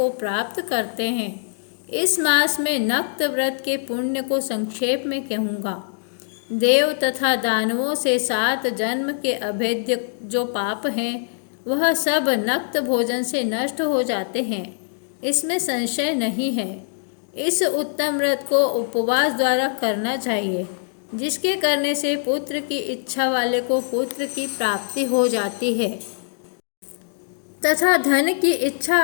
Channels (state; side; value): silent; right; digital silence